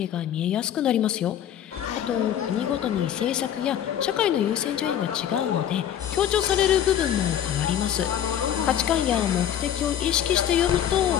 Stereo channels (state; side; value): quieter; right; 10.1 dB